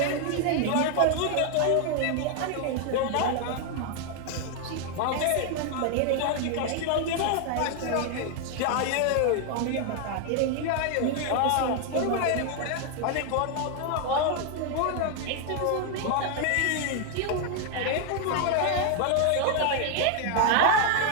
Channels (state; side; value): different; both; correlation 0.00